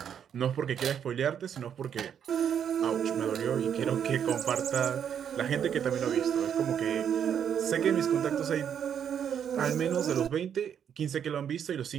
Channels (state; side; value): quieter; left; 8.5 dB